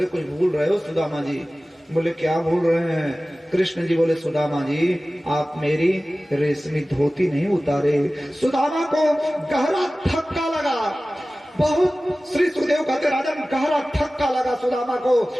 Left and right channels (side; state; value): both; normal; correlation 0.97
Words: कुछ भूल रहे हो सुदामा जी। बोले, क्या भूल रहे हैं। कृष्ण जी बोले, सुदामा जी आप मेरी रेशमी धोती नहीं उतारे। सुदामा को गहरा धक्का लगा, बहुत। श्री सुखदेव कहते, राजन गहरा धक्का लगा सुदामा को,